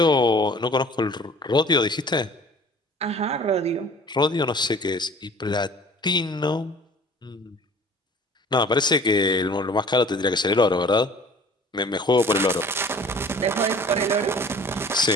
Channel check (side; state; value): both; normal; correlation 0.48